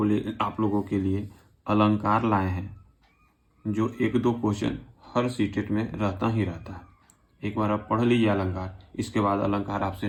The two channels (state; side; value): identical; both; correlation 1.00